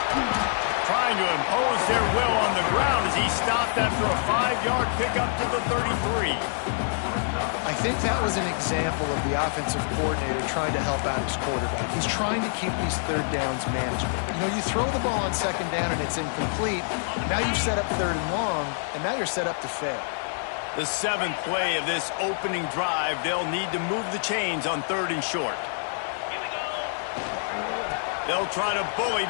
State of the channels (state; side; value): silent; right; digital silence